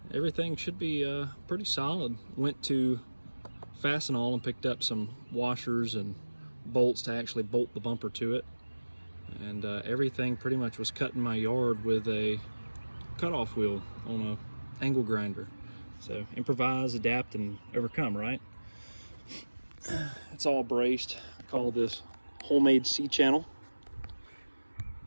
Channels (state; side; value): inverted; both; correlation -1.00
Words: Everything should be pretty solid. Went to Fastenal and picked up some washers and bolts to actually bolt the bumper to it, and everything pretty much was cut in my yard with a cutoff wheel on a angle grinder. So improvise, adapt, and overcome, right? It's all braced. I call this homemade C-channel,